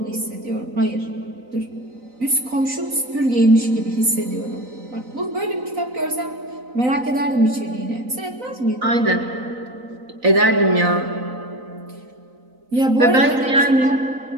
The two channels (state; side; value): late; left; 4.0 ms